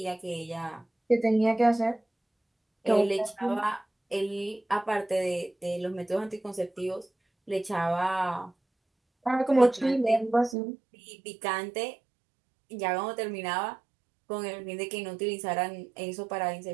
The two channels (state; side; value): drops out; left; at 10.6 s